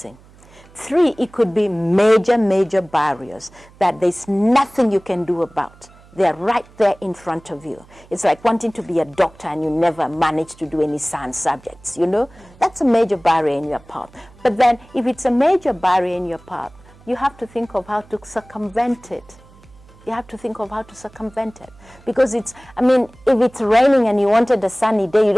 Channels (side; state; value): right; noise; hum, 25 dB below the sound